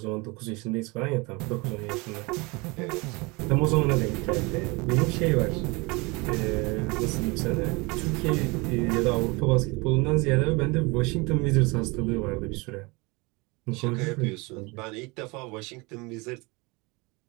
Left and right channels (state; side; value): quieter; left; 26.4 dB